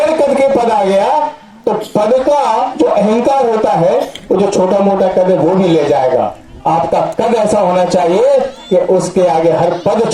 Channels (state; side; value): identical; both; correlation 1.00